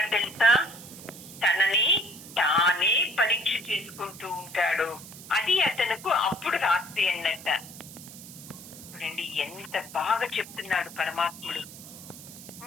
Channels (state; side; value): noise; right; hiss, 15 dB below the sound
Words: తెలుసా? తనని తానే పరీక్ష చేసుకుంటూ ఉంటాడు. అది అతనుకు అప్పుడు రాత్రి అన్నట్ట. చూడండి ఎంత బాగా చెప్తున్నాడు పరమాత్ముడు.